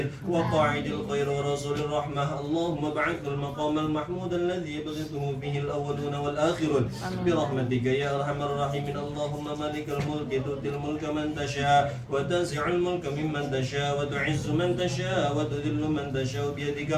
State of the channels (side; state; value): both; identical; correlation 1.00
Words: وقاعد الخير ورسول الرحمة اللهم ابعث المقام المحمود الذي يبغضه به الأولون والآخرون برحمتك يا أرحم الراحمين اللهم اللهم مالك الملك تؤتي الملك من تشاء وتنزع الملك ممن تشاء وتعز من تشاء وتذل من تشاء بيدك